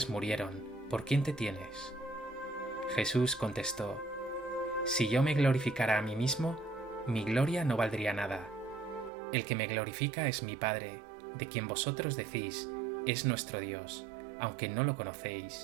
murieron. ¿Por quién te tienes? Jesús contestó: si yo me glorificara a mí mismo, mi gloria no valdría nada. El que me glorifica es mi Padre, de quien vosotros decís: es nuestro Dios, aunque no lo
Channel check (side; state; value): left; drops out; at 9.1 s